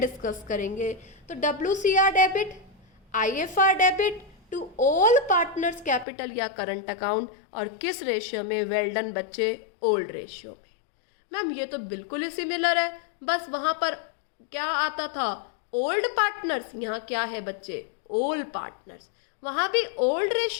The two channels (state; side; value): drops out; right; at 6.1 s